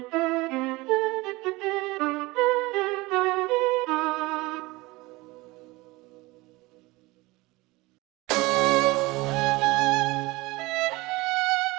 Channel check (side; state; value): left; quieter; 21.7 dB